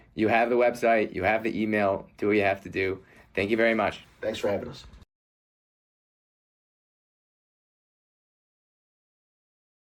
You have the website. You have the email. Do what you have to do. Thank you very much. Thanks for having us.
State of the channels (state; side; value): identical; both; correlation 1.00